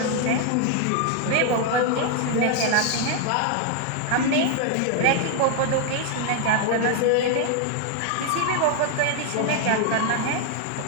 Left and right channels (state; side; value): different; both; correlation 0.00